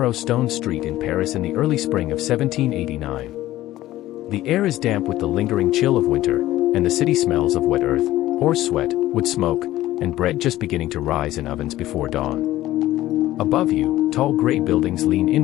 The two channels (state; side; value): quieter; right; 15.4 dB